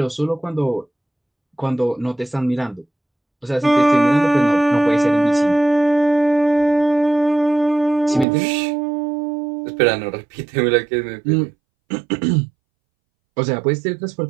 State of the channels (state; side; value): drops out; left; at 8.2 s